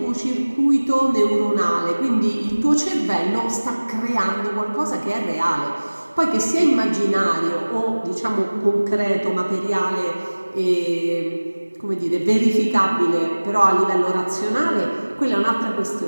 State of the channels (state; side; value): inverted; both; correlation -1.00